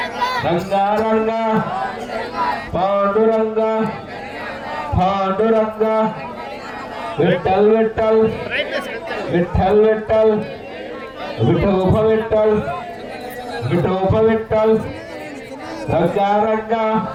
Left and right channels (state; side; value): identical; both; correlation 1.00